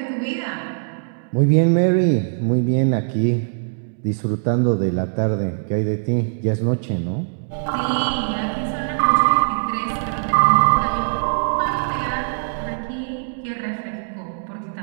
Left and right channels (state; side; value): silent; left; digital silence